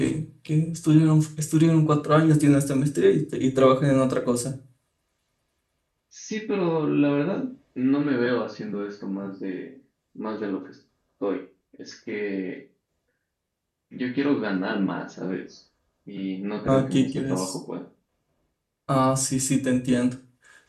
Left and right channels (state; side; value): identical; both; correlation 1.00